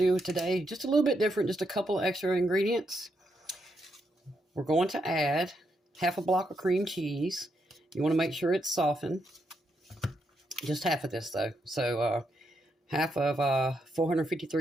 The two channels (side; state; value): both; normal; correlation 0.80